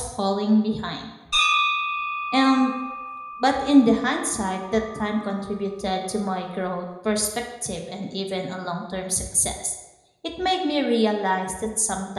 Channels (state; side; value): identical; both; correlation 1.00